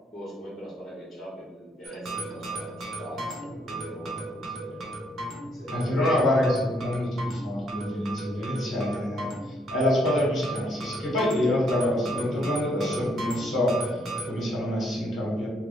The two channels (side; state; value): both; normal; correlation 0.72